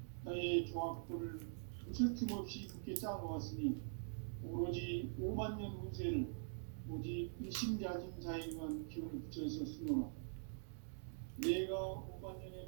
나의 조합권을 무쇠 틈 없이 굳게 짜놓았으니 오로지 5만 년 운세를 오직 일심자진 자에게만 기운을 붙여서 쓰노라. 내가 5만 년의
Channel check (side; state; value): left; silent; digital silence